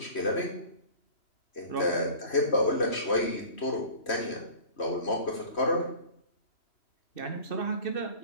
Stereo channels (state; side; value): late; right; 3.1 ms